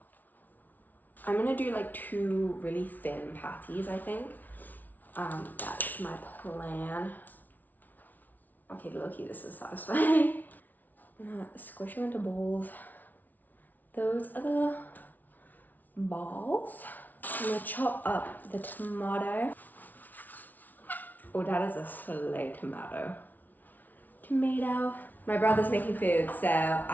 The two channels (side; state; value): right; late; 0.081 ms